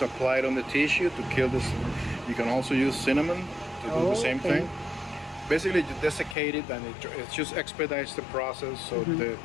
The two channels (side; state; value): right; drops out; at 6.4 s